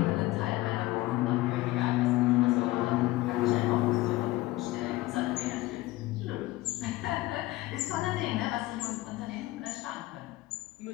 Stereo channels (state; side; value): quieter; right; 18.4 dB